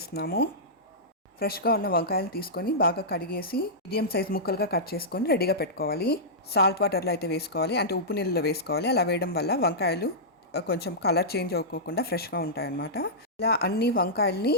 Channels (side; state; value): both; normal; correlation -0.14